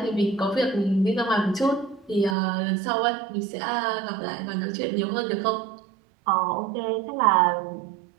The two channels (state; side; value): drops out; left; at 2.4 s